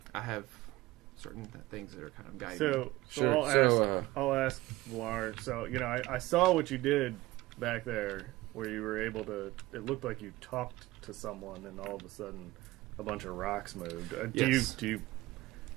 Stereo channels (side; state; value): left; quieter; 18.6 dB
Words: I have certain things that are kind of guiding me. So Sure. I'll ask Vlar. So I saw what you did back there, where you were able to. It looked like you talked to someone, and all of a sudden, a bunch of rocks moved. Yes.